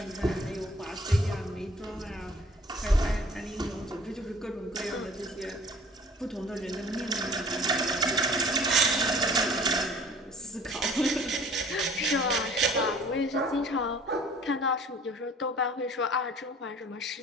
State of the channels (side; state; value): both; normal; correlation 0.51